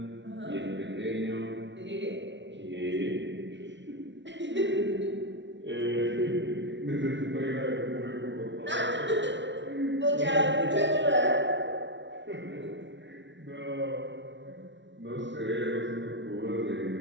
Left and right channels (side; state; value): left; late; 0.53 ms